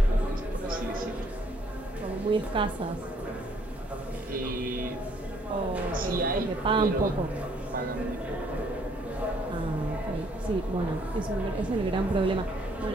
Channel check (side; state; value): both; normal; correlation 0.65